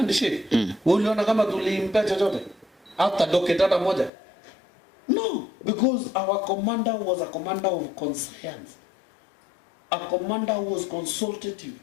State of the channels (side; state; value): right; drops out; at 4.1 s